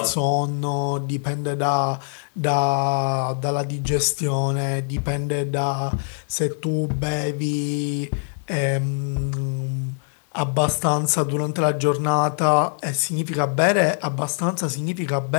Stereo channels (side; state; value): right; silent; 63 dB below the other